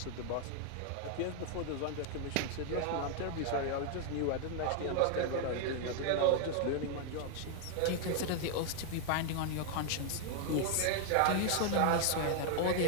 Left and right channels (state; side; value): different; both; correlation 0.00